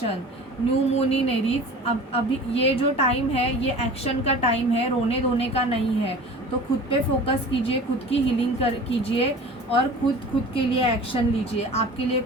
new moon in Aries. अब अभी ये जो टाइम है ये एक्शन का टाइम है, रोने धोने का नहीं है। तो खुद पे फोकस कीजिए, खुद की हीलिंग कीजिए, और खुद के लिए एक्शन लीजिए। आपके लिए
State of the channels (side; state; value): both; normal; correlation 0.40